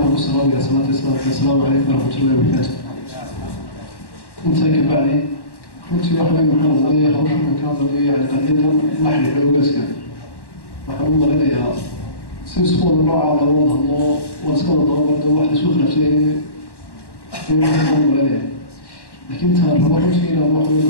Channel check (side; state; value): right; late; 1.1 ms